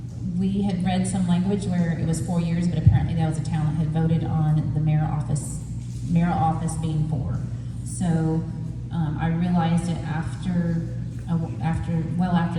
We had read some language where it was 4 years, but apparently that was a town that had voted on the mayoral office being 4. So I realized it after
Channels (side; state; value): both; identical; correlation 1.00